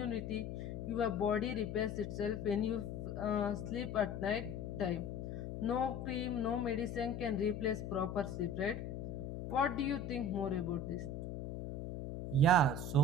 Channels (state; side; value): noise; left; hum, 5 dB below the sound